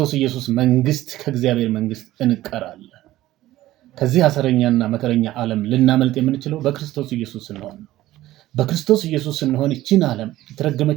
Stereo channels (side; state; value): left; quieter; 15.5 dB